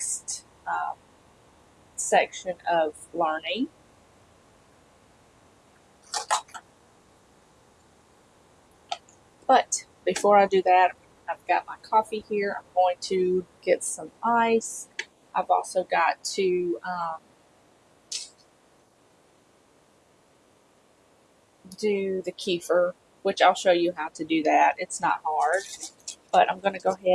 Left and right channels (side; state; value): both; identical; correlation 1.00